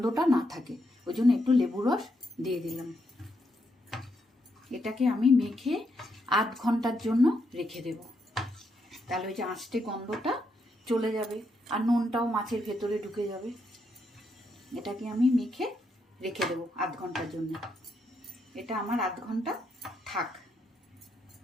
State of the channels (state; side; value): normal; both; correlation 0.79